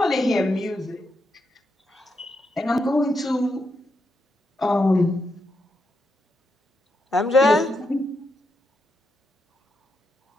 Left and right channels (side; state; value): both; normal; correlation 0.83